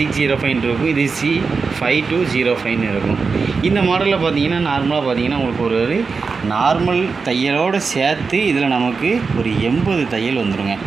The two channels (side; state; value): left; quieter; 4.8 dB